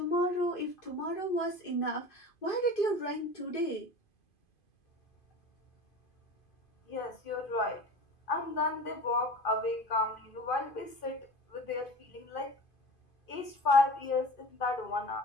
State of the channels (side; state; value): right; late; 2.5 ms